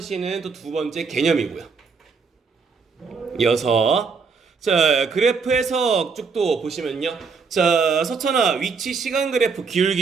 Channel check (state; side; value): quieter; left; 5.1 dB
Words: 또 두 번째 개념이고요. 이어서 자, 그래프 해석 쭉 또 보시면요. 자, 서천아, 위치 시간 그래프